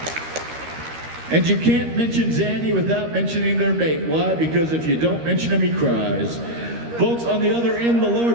And you can't mention Zanny without mentioning their mate. Why? Because if you don't mention him, he cries. Folks, on the other end, the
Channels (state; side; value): late; left; 13 ms